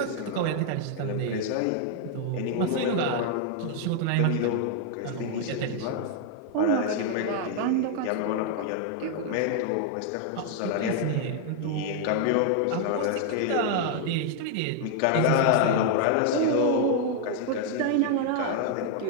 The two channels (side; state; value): both; different; correlation 0.00